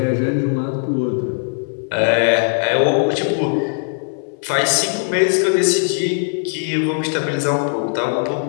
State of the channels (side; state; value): right; silent; 67 dB below the other